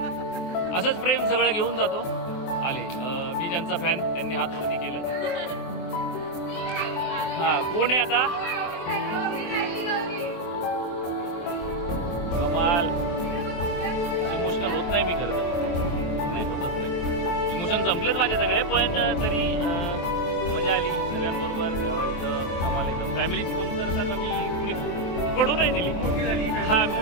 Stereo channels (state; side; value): late; right; 23 ms